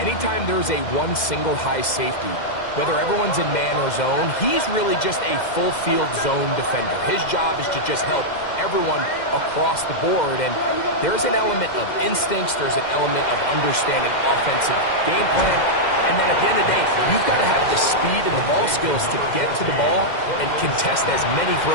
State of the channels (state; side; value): late; right; 2.1 ms